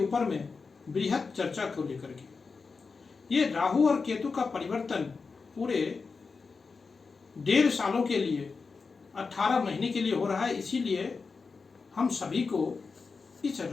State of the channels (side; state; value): right; quieter; 4.7 dB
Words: में बृहद चर्चा को लेकर के। ये राहु और केतु का परिवर्तन पूरे 1.5 सालों के लिए 18 महीने के लिए हो रहा है। इसीलिए हम सभी को इस